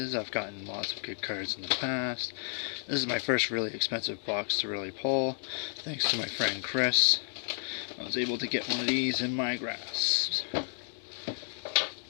I've gotten lots of good cards in the past. This is my first really expensive box to really pull. Thanks to my friend Chris, I was able to get one of these in my grasp.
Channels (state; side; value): silent; right; 55 dB below the other